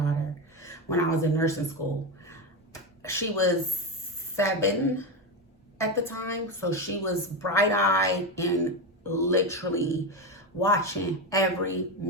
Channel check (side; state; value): both; normal; correlation 0.14